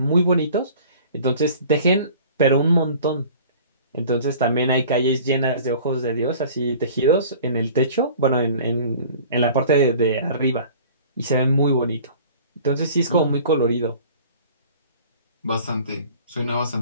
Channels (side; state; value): both; inverted; correlation -0.47